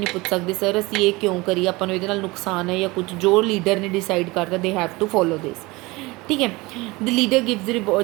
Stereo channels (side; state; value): left; quieter; 22.6 dB